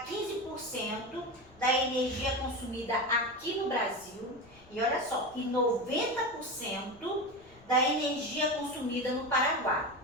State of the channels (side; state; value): left; noise; rumble, 25 dB below the sound